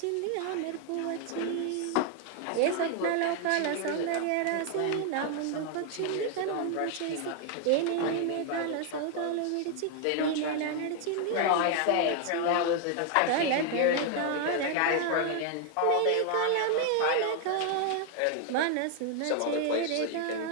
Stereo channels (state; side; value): different; both; correlation 0.00